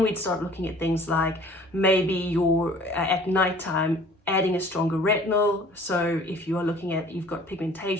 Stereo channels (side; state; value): both; normal; correlation 0.51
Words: we'd start looking at things like maybe you're at nighttime adding a stronger retinol. So if you are looking at, you've got